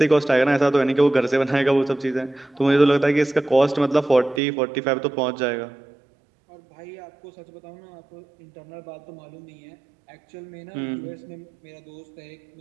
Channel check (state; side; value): drops out; left; at 4.4 s